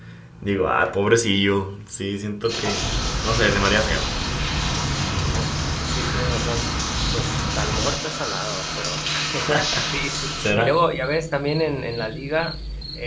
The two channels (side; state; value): both; identical; correlation 1.00